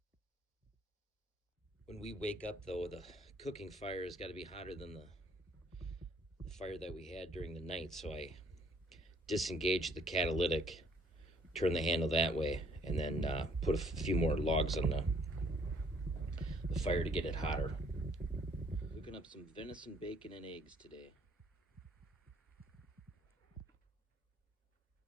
When we wake up, though, the cooking fire has got to be hotter than the fire that we had during the night, so I disengage the catalytic, turn the handle that way, and then put a few more logs on the fire to get it hotter. Cooking up some venison, bacon, and eggs today.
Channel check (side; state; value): both; normal; correlation 0.63